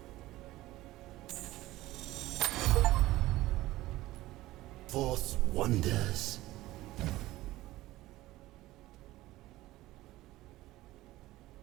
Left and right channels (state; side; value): quieter; left; 17.1 dB